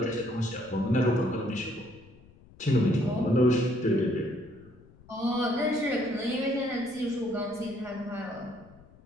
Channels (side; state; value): left; noise; rumble, 25 dB below the sound